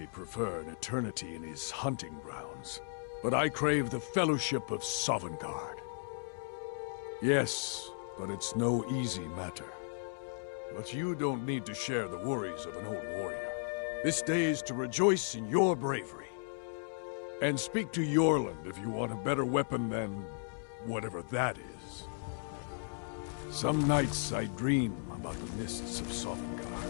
prefer an eternity in his hunting grounds, but I crave the fellowship of Sovngarde. Yes, but it's no easy matter. But you don't need to share the worries of an old warrior. This day is to rejoice in your bravery. And speak to Yorland if you want a better weapon than whatever that is. Some nights I dream about the mists of Sovngarde.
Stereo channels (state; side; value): silent; right; digital silence